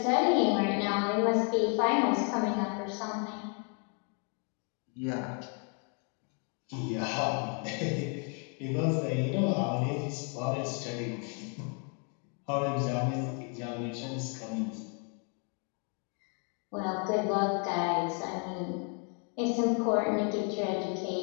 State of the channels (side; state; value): right; quieter; 39.2 dB